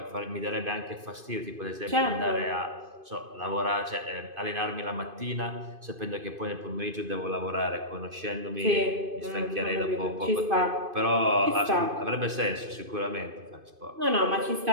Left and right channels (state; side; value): late; left; 2.5 ms